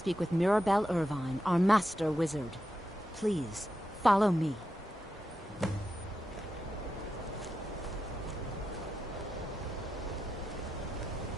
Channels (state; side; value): normal; both; correlation 0.88